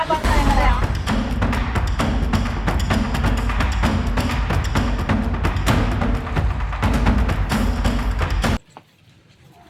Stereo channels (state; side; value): identical; both; correlation 1.00